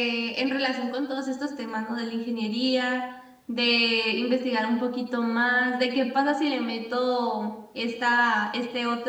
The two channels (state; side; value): identical; both; correlation 1.00